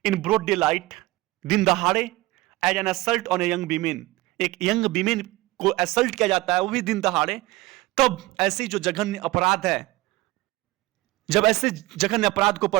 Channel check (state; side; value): quieter; left; 19.3 dB